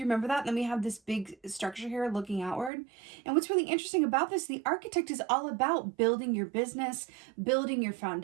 you remember that? Then we have this big structure here looking outward. And what's really interesting about this, the Architect is all about building your business, building your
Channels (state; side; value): drops out; left; at 2.7 s